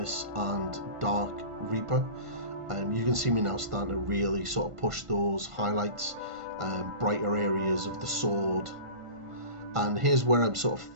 and Dark Reaper. You can see me now starting to really sort of push those highlights, brighter areas of the sword. And here's where I'm sort of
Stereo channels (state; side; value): late; left; 1.5 ms